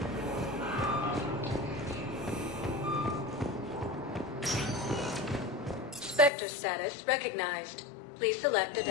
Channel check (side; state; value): right; drops out; at 6.3 s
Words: Spectre status recognized. Please select a